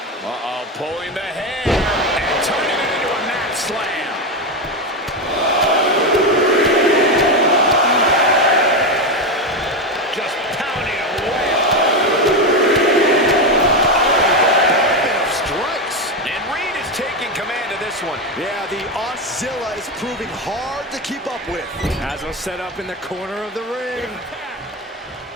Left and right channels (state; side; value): normal; both; correlation 0.12